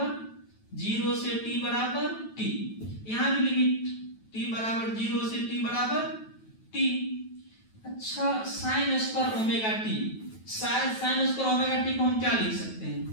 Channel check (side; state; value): right; late; 9.2 ms